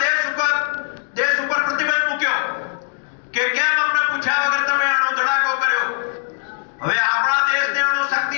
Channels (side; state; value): right; silent; digital silence